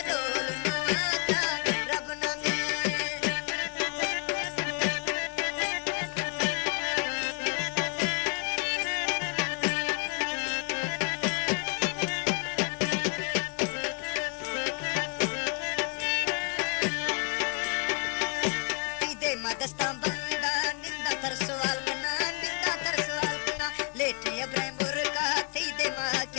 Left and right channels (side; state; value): right; quieter; 36.8 dB